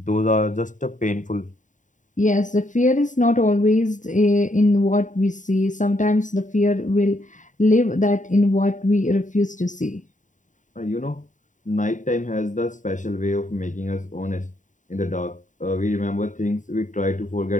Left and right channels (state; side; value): late; right; 0.36 ms